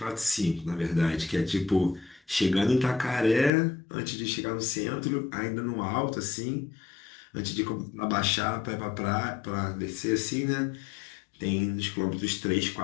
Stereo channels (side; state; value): right; drops out; at 3.5 s